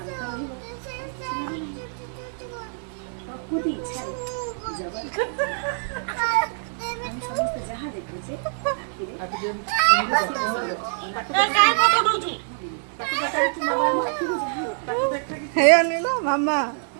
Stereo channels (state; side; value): silent; left; digital silence